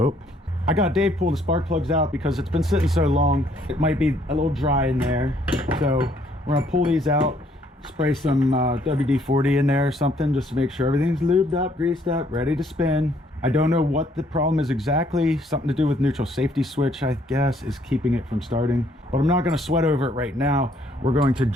I got Dave pull the spark plugs out because it's been sitting so long. It might be a little dry in there. So we're gonna pull these out, spray some WD-40 in there or something just to make sure everything's lubed up, greased up, ready to spin. I don't know what the problem is exactly. Something to do with neutral safety switch, I guess, is keeping it from starting. But I'm not gonna sweat over it right now. We're going to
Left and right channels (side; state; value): both; normal; correlation 0.66